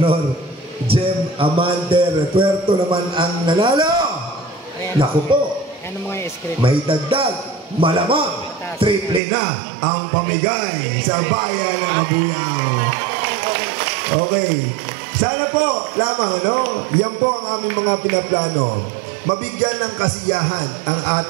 Jem Amante Retuerto naman ang nanalo, naku po, may dagdag, malamang triple na ang pamigay sa bayan ng Mabuyaw. Okay. Sana po lamang, no? Yan po ang aming mga pinaplano. Mabigyan ng kasiyahan ang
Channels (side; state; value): left; drops out; at 9.2 s